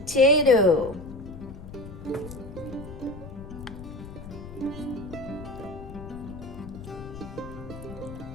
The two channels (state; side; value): noise; left; rumble, 12 dB below the sound